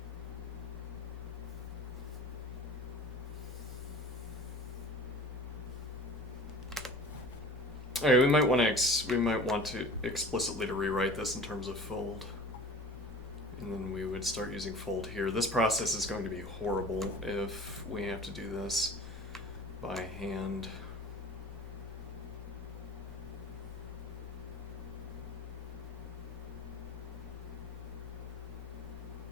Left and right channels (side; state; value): both; normal; correlation 0.41